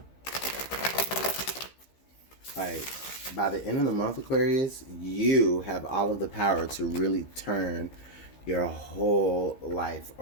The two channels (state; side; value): late; right; 15 ms